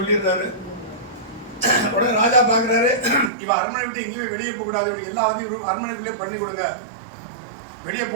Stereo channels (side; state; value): left; drops out; at 3.3 s